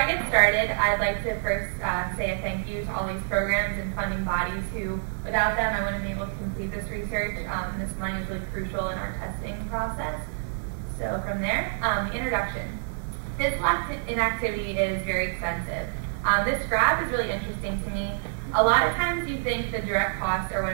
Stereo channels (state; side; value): silent; left; digital silence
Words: get started, I'd like to first say a thank you to all these programs and funding bodies who, without them, I wouldn't be able to complete this research. This money is really crucial in our testing process. So from there, introduction. Physical inactivity is very expensive. This graph is really interesting to me. A lot of times you think the direct costs are